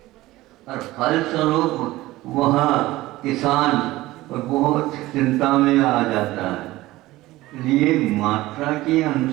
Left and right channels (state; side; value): quieter; left; 17.7 dB